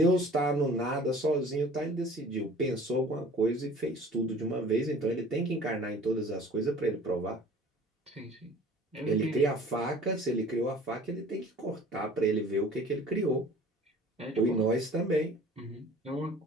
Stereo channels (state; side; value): normal; both; correlation 0.47